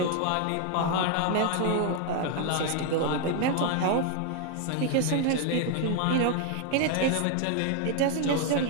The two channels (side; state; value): both; different; correlation 0.01